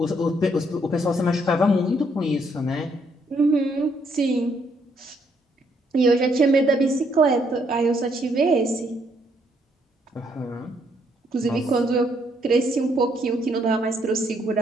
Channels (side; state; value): both; normal; correlation 0.71